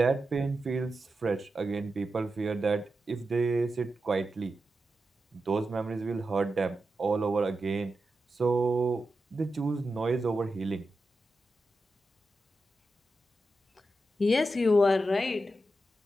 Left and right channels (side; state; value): both; normal; correlation 0.89